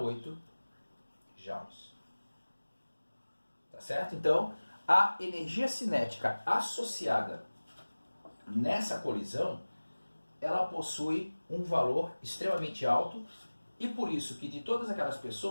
joules. Tá certo? Então, a energia cinética associada nessa colisão, ela possui um valor extremamente alto e por isso que de todas aquelas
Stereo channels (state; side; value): inverted; both; correlation -1.00